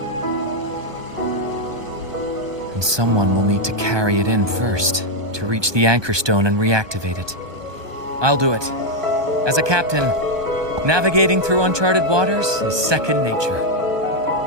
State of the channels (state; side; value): late; left; 1.2 ms